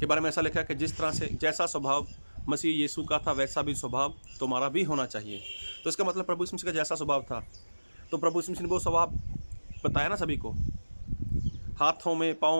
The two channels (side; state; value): both; inverted; correlation -1.00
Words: बारे में ऐसा लिखा है कि जिस तरह से जैसा स्वभाव मसीह यीशु का था वैसा भी स्वभाव तुम्हारा भी होना चाहिए। तो इसका मतलब प्रभु यीशु मसीह का जैसा स्वभाव था, तो प्रभु यीशु मसीह ने वो स्वभाव बताया ना सभी को। हाथों में,